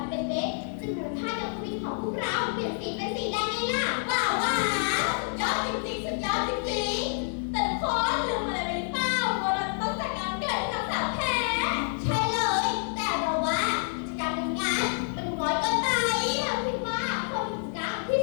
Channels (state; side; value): silent; right; 56 dB below the other